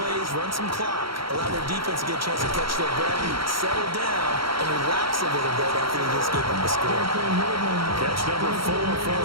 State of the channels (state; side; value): late; left; 0.74 ms